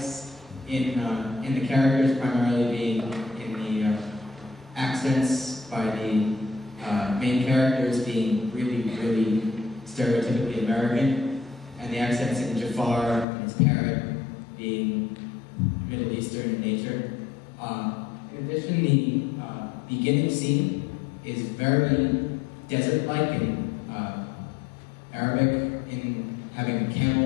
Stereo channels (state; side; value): drops out; right; at 13.2 s